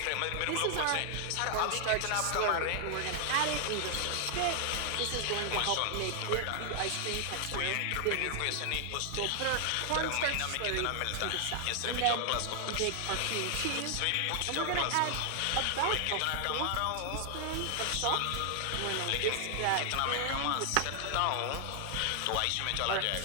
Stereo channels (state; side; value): different; both; correlation 0.00